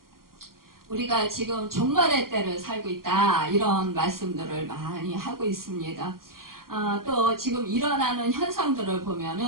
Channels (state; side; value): late; left; 0.92 ms